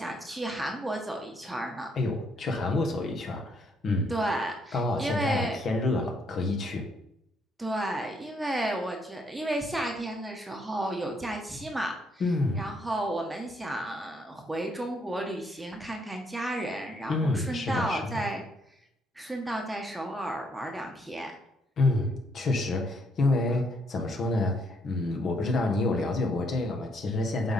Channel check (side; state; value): both; normal; correlation 0.72